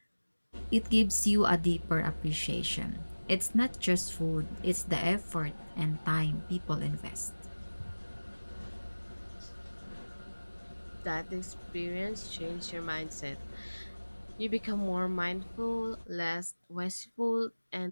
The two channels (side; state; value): both; inverted; correlation -1.00